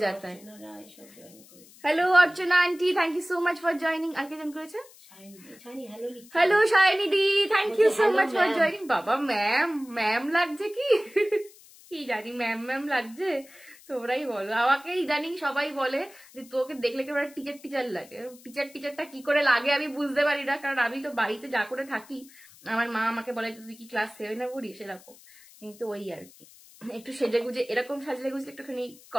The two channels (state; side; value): noise; left; hiss, 23 dB below the sound